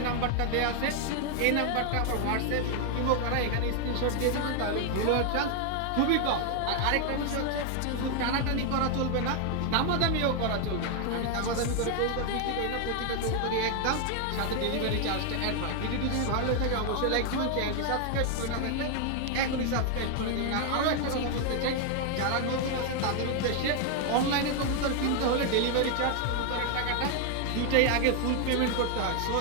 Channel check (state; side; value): different; both; correlation 0.00